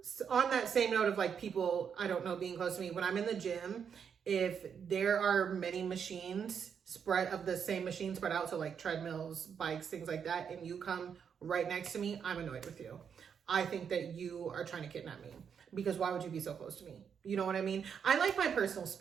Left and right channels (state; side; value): quieter; left; 7.2 dB